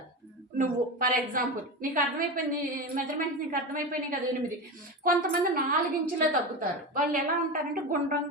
నువ్వు ఫర్ ఎగ్జాంపుల్ నీకు అర్థమైపోయింది, మెజర్మెంట్స్ నీకు అర్థమైపోయినాయి కదా 8. కొంతమంది 4 ఇంచులే తగ్గుతారు. వాళ్ళు ఎలా ఉంటారంటే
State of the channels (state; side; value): normal; both; correlation 0.22